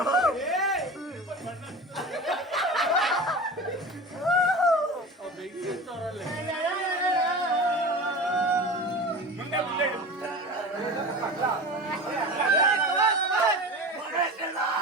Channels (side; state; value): both; normal; correlation 0.32